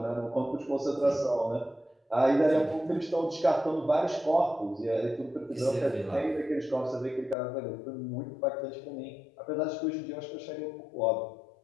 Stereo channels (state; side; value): drops out; right; at 7.4 s